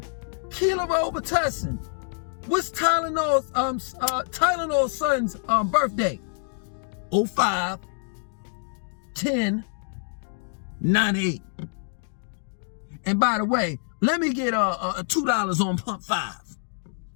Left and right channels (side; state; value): right; silent; digital silence